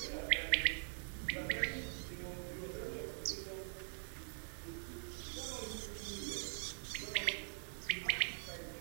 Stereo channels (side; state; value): left; silent; digital silence